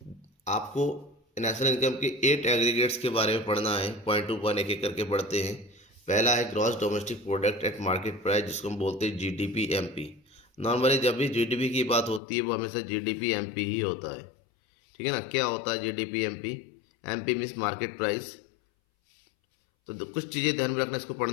आपको नेशनल इनकम के 8 एग्रीगेट्स के बारे में पढ़ना है, पॉइंट टू पॉइंट एक एक करके पढ़ते हैं। पहला है gross domestic product at market price, जिसको हम बोलते हैं GDP-MP। नॉर्मली जब भी जीडीपी की बात होती है वो हमेशा जीडीपी एमपी ही होता है, ठीक है ना। क्या होता है GDP MP? MP means market price. तो कुछ चीज़ें ध्यान में रखना इसको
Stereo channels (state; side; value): drops out; right; at 12.2 s